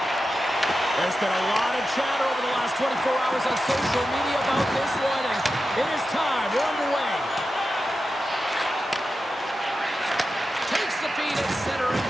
There's been a lot of chatter over the last 24 hours on social media about this one, and it is time. We're underway. Takes the feed at center and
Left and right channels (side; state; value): both; normal; correlation 0.91